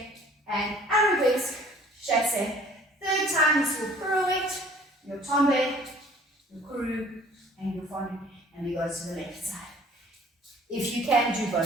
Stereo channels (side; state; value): both; normal; correlation 0.53